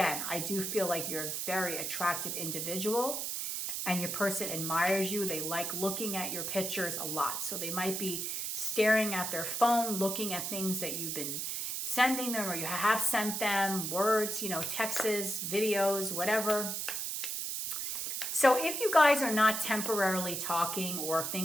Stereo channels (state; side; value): noise; right; hiss, 2 dB below the sound